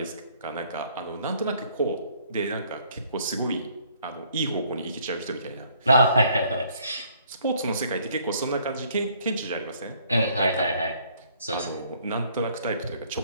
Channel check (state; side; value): inverted; both; correlation -0.62